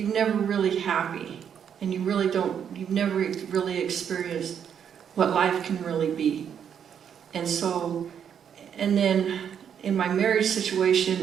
never really happy. And you've never really experienced what life can really be. And so, and then in my marriage situation,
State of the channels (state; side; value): quieter; left; 8.2 dB